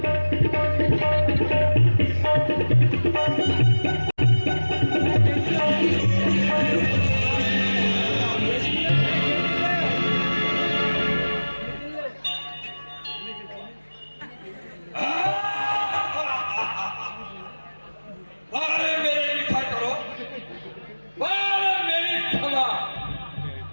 अरे मेरे लिखा करो, अरे मेरी क्षमा,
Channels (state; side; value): inverted; both; correlation -1.00